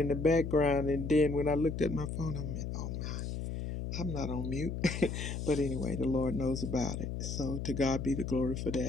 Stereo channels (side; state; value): left; noise; hum, 4 dB below the sound